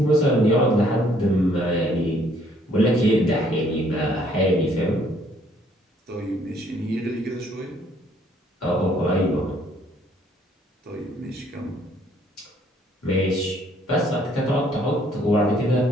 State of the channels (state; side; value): normal; both; correlation 0.64